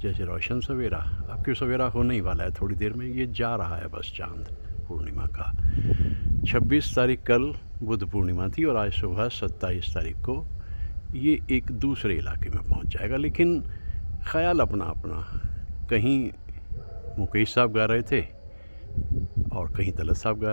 रोशन सवेरा। अब क्यों सवेरा होने ही वाला है, थोड़ी देर में ये जा रहा है बस चांद पूर्णिमा का। 26 तारीख कल बुद्ध पूर्णिमा थी और आज सुबह 27 तारीख को ये एक दूसरे इलाके में पहुंच जाएगा। लेकिन ख्याल अपना अपना। कहीं मुकेश साहब गा रहे थे और कहीं तलत साहब गा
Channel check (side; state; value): both; inverted; correlation -1.00